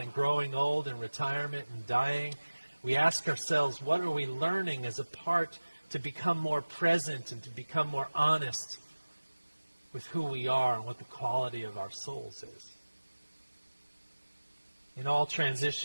growing old and retirement and dying, we ask ourselves, what are we learning as a part to become more present and to become more honest with who we are and what the quality of our souls is? In all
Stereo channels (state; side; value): inverted; both; correlation -1.00